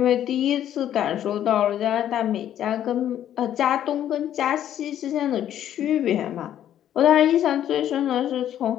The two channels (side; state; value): right; quieter; 11.0 dB